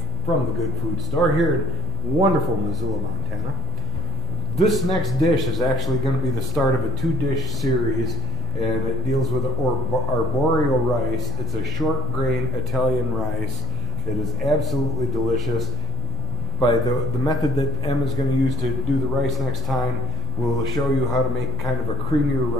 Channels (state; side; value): noise; right; hum, 11 dB below the sound